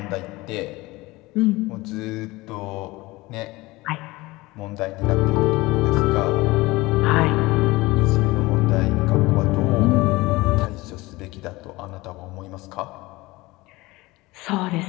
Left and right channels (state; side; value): quieter; right; 21.0 dB